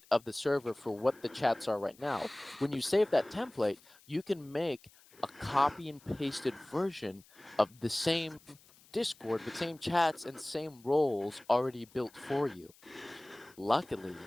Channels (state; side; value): noise; left; hiss, 26 dB below the sound